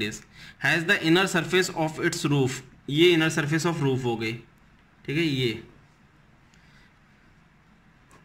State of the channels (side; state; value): both; identical; correlation 1.00